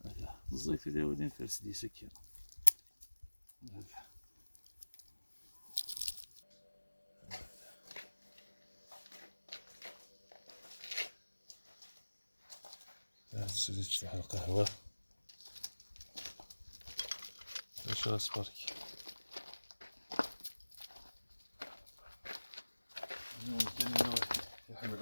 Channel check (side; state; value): both; inverted; correlation -1.00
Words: الزيت اللي ولين فارس دي سكين تسدي تشرح القهوة. اش اصبرك ممكن يا